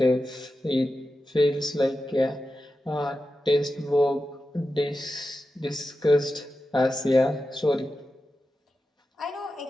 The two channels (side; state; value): both; normal; correlation 0.92